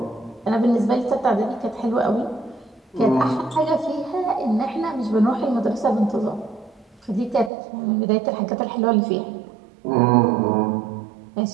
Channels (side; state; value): left; drops out; at 7.5 s